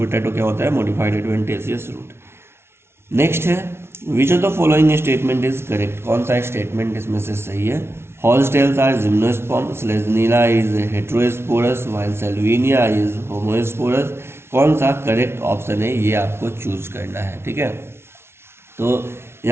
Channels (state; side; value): late; left; 0.12 ms